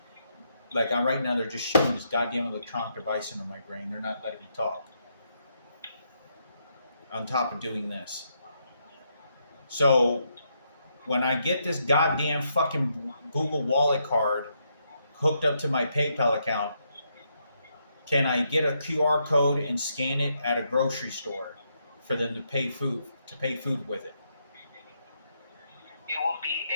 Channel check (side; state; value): both; inverted; correlation -0.78